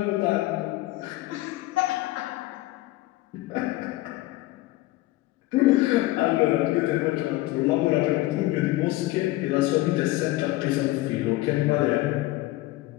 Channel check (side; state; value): right; quieter; 18.1 dB